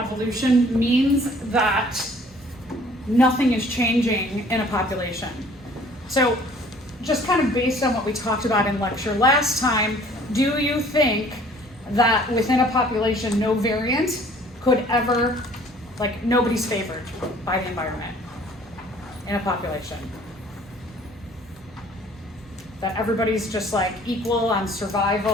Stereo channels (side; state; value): both; normal; correlation 0.54